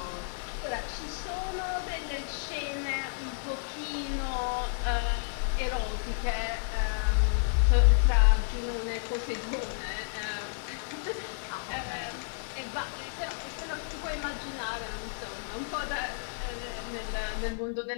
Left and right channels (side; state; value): right; silent; 55 dB below the other